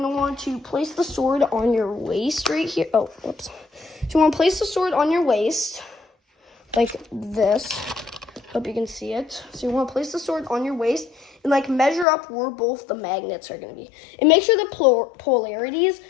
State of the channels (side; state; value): right; drops out; at 12.1 s